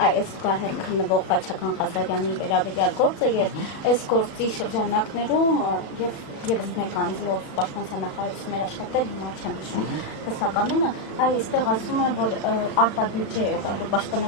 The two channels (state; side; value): late; right; 35 ms